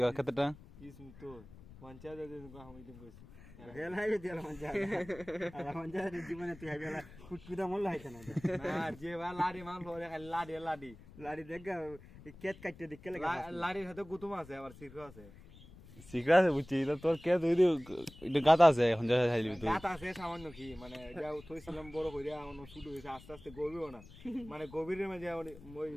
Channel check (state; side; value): noise; left; rumble, 19 dB below the sound